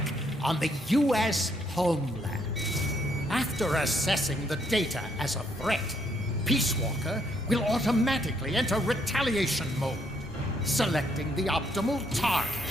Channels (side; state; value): both; normal; correlation 0.72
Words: on the U.S. homeland. After assessing the data as a threat, Peace Walker will automatically enter retaliation mode, selecting the optimal